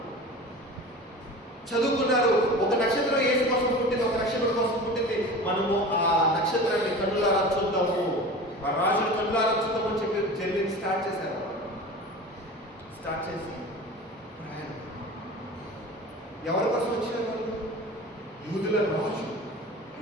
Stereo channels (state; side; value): normal; both; correlation 0.35